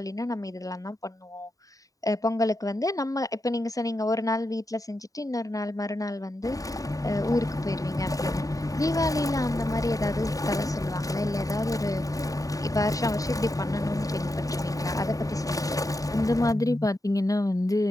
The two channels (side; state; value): right; late; 0.17 ms